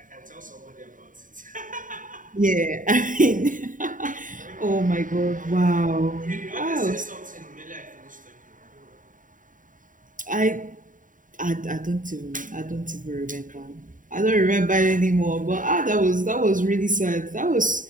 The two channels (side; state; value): left; late; 0.38 ms